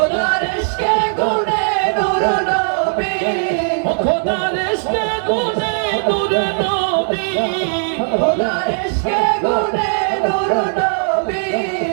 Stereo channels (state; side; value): silent; left; digital silence